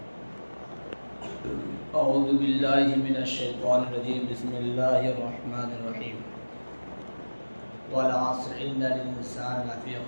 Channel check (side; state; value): both; inverted; correlation -1.00